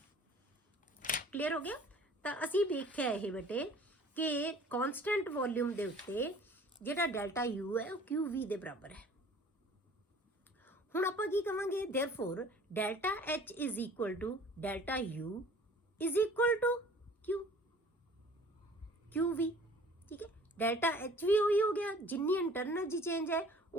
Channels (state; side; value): normal; both; correlation 0.49